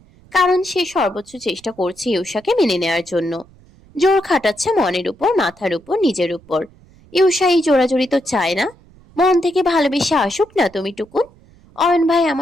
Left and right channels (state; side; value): noise; right; rumble, 27 dB below the sound